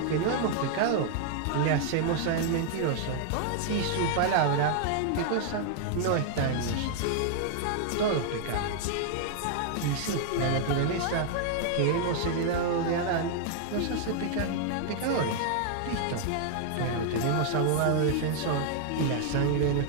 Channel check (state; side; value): different; both; correlation 0.00